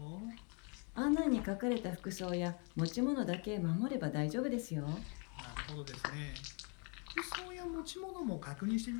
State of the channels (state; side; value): quieter; right; 35.7 dB